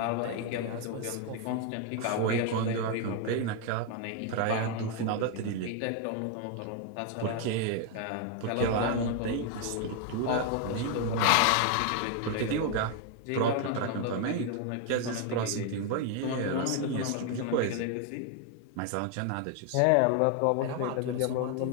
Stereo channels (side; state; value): both; different; correlation 0.01